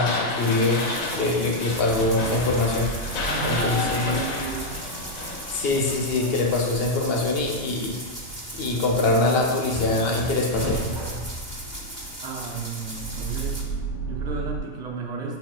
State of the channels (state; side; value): late; right; 2.8 ms